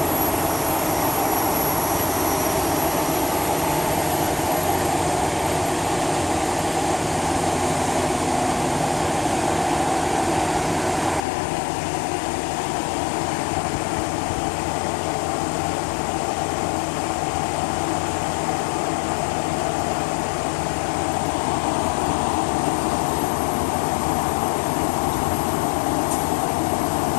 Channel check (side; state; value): right; drops out; at 11.2 s